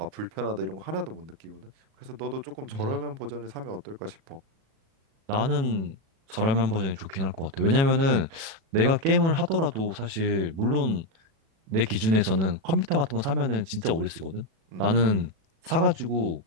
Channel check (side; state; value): left; late; 36 ms